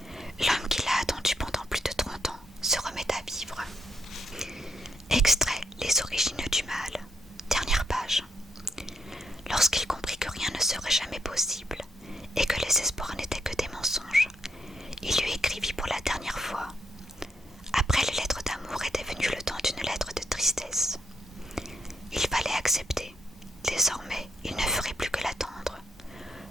L'homme qui l'a attendu pendant plus de 30 ans se remet à vivre. Extrait Les origines du mal. Dernière page. Lorsqu'il comprit que rien ne serait jamais possible et que les espoirs n'étaient que des mensonges, il lui écrivit pour la dernière fois. Après les lettres d'amour était venu le temps d'une lettre de tristesse. Il fallait accepter. Désormais, il ne ferait plus que l'attendre.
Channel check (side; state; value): both; normal; correlation 0.78